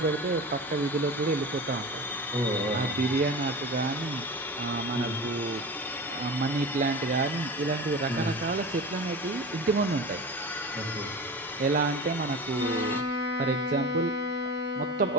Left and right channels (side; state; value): both; normal; correlation 0.31